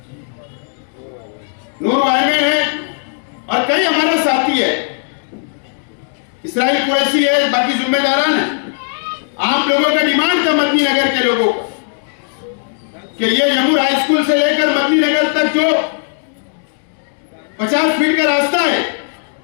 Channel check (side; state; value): right; silent; digital silence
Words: नूर भाई है, और कई हमारा साथी है, इसराइल कुरैशी है, बाकी जिम्मेदारान है। आप लोगों का डिमांड था मदनी नगर के लोगों का कि ये यमुर हाई स्कूल से लेकर मदनी नगर तक जो 50 फीट का रास्ता है,